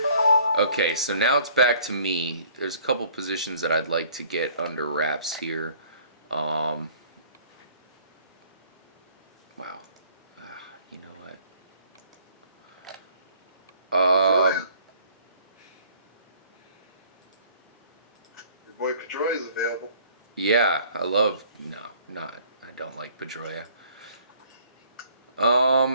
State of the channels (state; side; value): inverted; both; correlation -0.56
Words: Okay, so now it's back to me. There's a couple positions that I'd like to get under wraps here. Wow. You know what? Your boy Pedroia is available. Yeah, I don't like Pedroia.